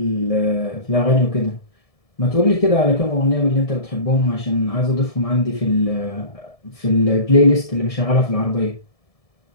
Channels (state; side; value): late; right; 1.7 ms